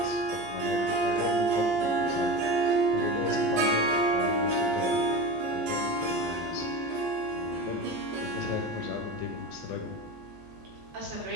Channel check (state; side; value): normal; both; correlation 0.28